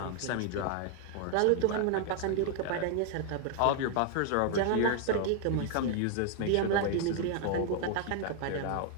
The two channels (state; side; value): different; both; correlation 0.00